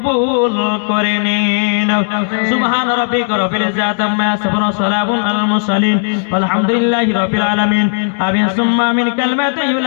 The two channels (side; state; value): right; silent; digital silence